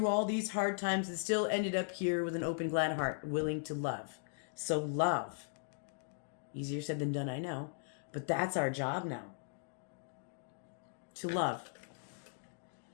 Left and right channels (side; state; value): right; silent; digital silence